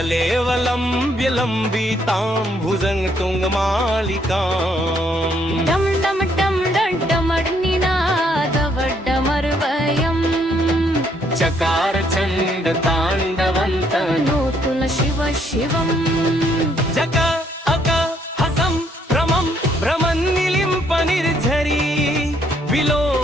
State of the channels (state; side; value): normal; both; correlation 0.69